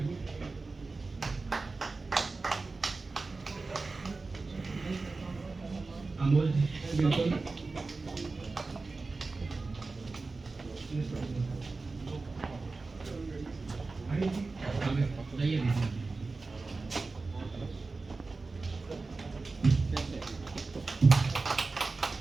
अमोल जी बिल्कुल। अरे जी आइए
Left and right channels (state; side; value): quieter; left; 3.8 dB